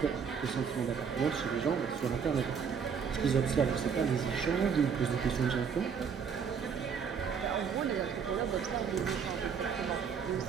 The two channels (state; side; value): quieter; left; 6.6 dB